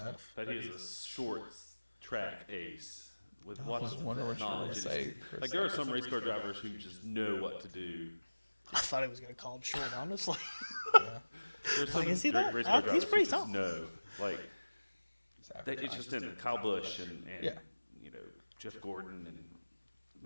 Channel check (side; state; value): both; inverted; correlation -1.00